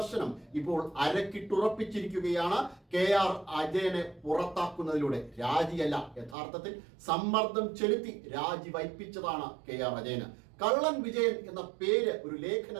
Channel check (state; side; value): drops out; left; at 6.4 s